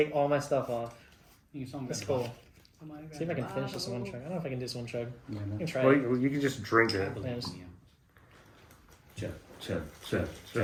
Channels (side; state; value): both; identical; correlation 1.00